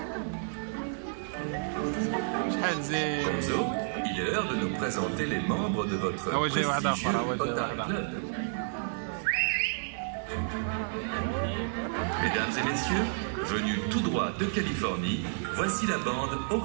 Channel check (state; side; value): silent; left; 57 dB below the other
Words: Gonzo, il est l'heure de nous présenter les membres de votre prestigieux Otari Club. Mesdames et messieurs, venus tout droit de Californie, voici la bande au